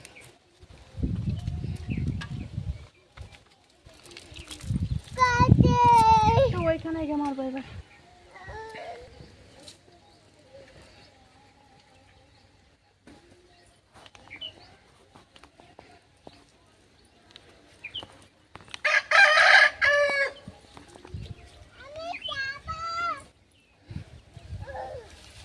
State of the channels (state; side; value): identical; both; correlation 1.00